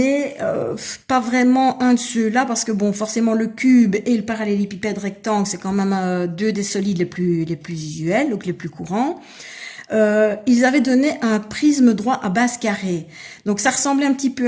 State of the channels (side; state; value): both; identical; correlation 1.00